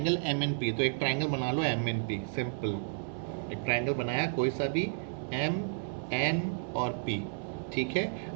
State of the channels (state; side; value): silent; left; digital silence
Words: एम एन पी, तो एक ट्राइंगल बना लो एम एन पी. सिंपल, एक ट्राइंगल बनाया कोई सा भी, एम एन और पी. ठीक है,